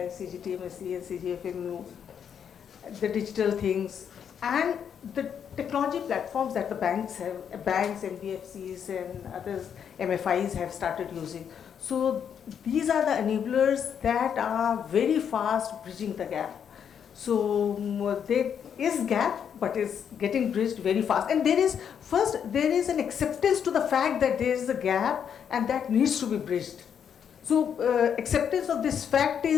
CGTMSE and CGFMU, the digital things, and the technology platforms that the banks, NBFCs and others, MFIs have started using. So these are the enablers that are very fast bridging the gap. So there is gap, but is getting bridged very fast. And there is an acceptance to the fact that there is a gap and that needs to be bridged. So acceptance of this fact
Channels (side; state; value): right; quieter; 8.0 dB